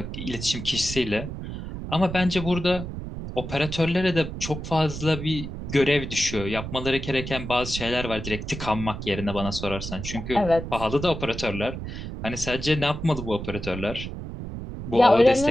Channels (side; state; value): right; noise; rumble, 7 dB below the sound